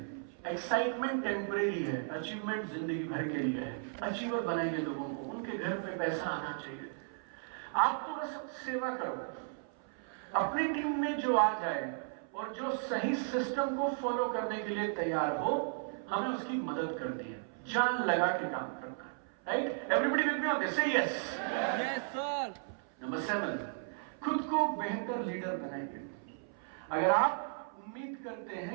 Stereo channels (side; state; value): left; silent; 54 dB below the other